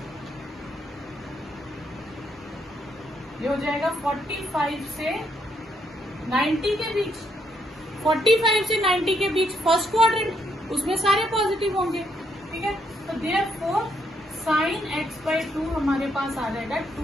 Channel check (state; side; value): normal; both; correlation 0.75